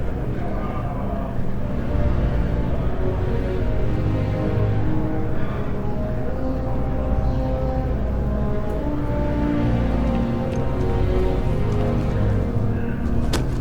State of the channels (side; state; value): both; identical; correlation 1.00